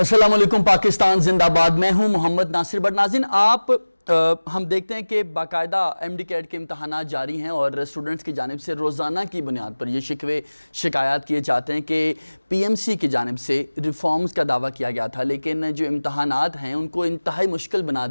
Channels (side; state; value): both; inverted; correlation -1.00